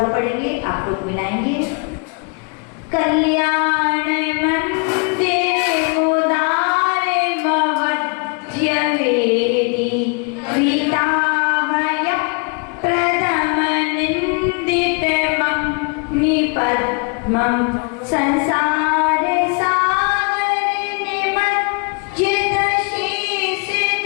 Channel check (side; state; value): right; quieter; 33.8 dB